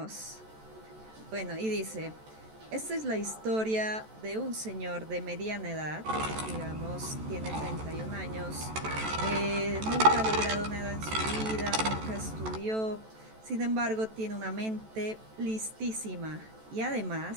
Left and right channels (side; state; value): left; late; 14 ms